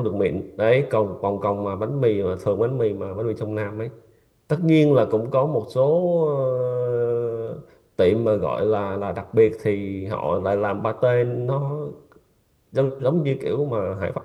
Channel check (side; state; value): both; identical; correlation 1.00